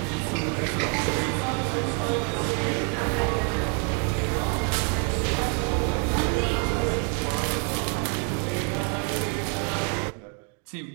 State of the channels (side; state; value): left; quieter; 39.9 dB